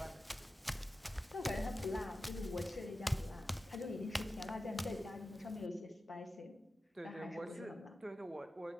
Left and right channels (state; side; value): normal; both; correlation 0.93